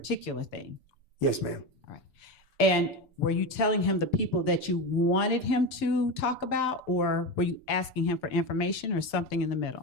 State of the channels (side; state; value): right; late; 6.8 ms